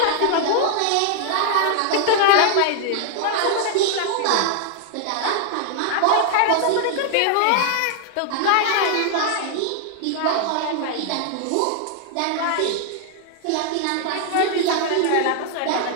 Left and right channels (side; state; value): both; different; correlation 0.00